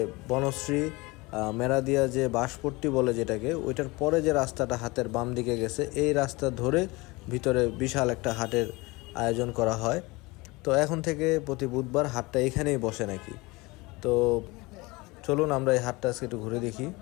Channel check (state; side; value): quieter; right; 23.7 dB